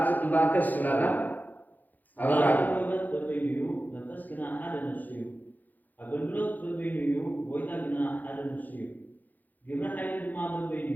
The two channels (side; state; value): right; late; 0.083 ms